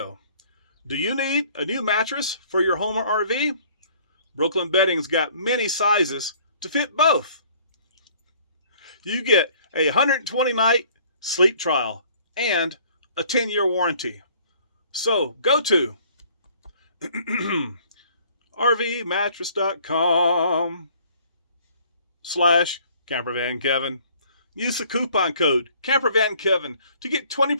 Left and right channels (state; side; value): inverted; both; correlation -0.56